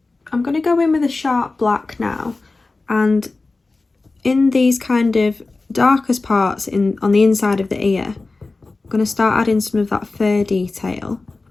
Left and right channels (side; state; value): right; quieter; 3.5 dB